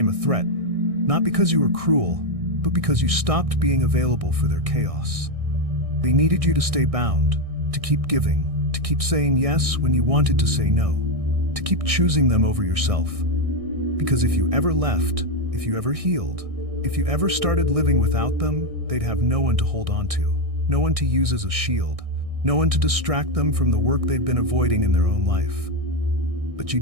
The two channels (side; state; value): left; late; 1.6 ms